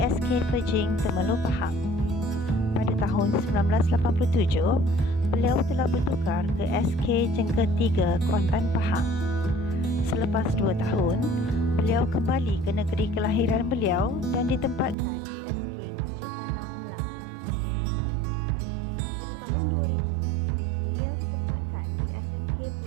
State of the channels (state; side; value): drops out; left; at 15.0 s